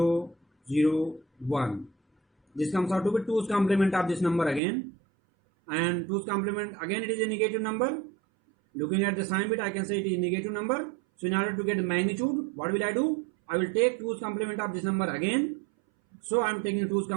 0, 1. This comes out to be 2's complement of this number again, and 2's complement again, it is a negative number. Looking at the sign bit, I can say it is a negative number. So in order to get the magnitude, what will I do? I will take 2's complement of this number again. So I am taking 2's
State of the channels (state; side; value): drops out; left; at 4.6 s